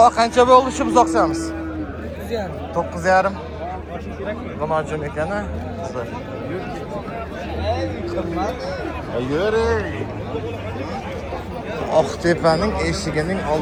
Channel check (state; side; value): identical; both; correlation 1.00